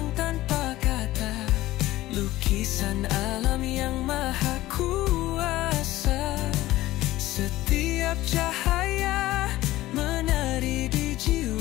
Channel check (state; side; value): quieter; right; 16.5 dB